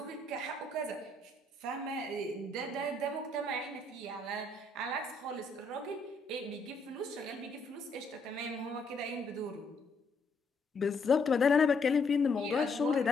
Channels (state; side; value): quieter; right; 3.1 dB